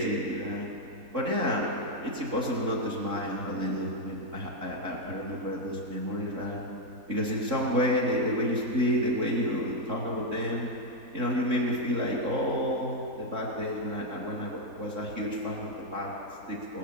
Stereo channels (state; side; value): late; left; 3.7 ms